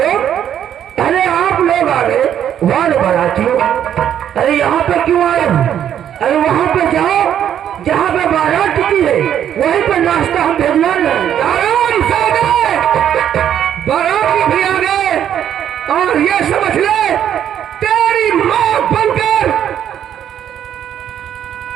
अरे आप लोग आ गए वाले बारातियों। अरे यहाँ पे क्यों आए हो? अरे वहाँ पे जाओ जहाँ पे बारात टिकी है, वहीं पे नाश्ता हम भेजवा लें। आराम से गए, बाराती भी आ गए, और ये समझ ले तेरी माँ बनकर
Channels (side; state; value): left; quieter; 9.9 dB